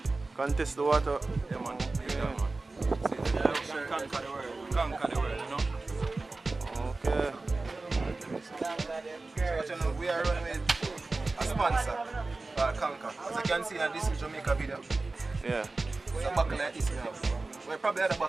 Contest the water. Yeah, man. Yeah. Conquer the world. Conquer the world, you know? Okay. So, you know, we are running with a sponsor called Conquer. As you can see, this is Jamaica video. Yeah. It's a buckle like this now. We probably had a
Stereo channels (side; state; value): left; quieter; 3.4 dB